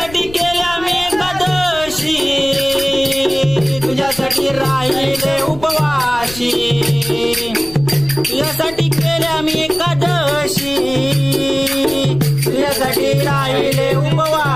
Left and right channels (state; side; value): noise; left; rumble, 16 dB below the sound